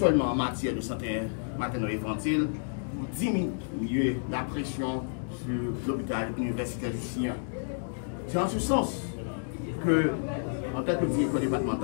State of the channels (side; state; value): right; silent; digital silence